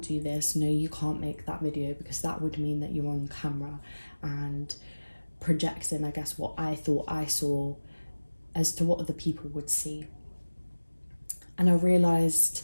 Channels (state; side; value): inverted; both; correlation -1.00